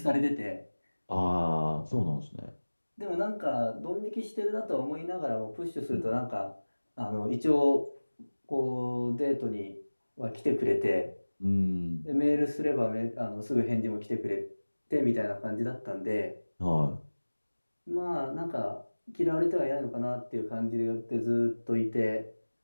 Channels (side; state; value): both; inverted; correlation -1.00